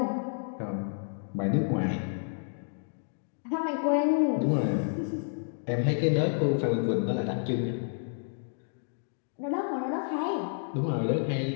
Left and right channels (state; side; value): silent; right; digital silence